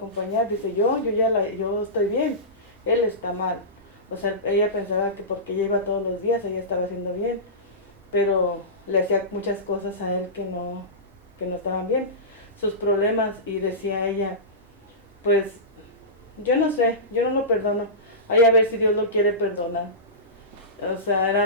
Dice, yo estoy bien, él está mal. O sea, ella pensaba que porque ella iba todos los días, ella estaba haciendo bien, pero le hacía muchas cosas a él que no estaban bien, sus problemas, y decía ella, pues, yo no sé, yo no lo perdono, hay a ver si Dios lo quiere perdonar. O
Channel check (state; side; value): normal; both; correlation -0.20